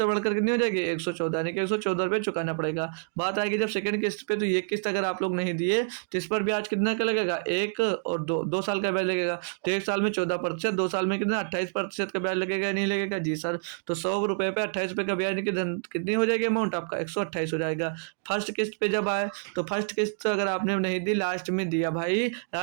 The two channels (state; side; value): silent; left; digital silence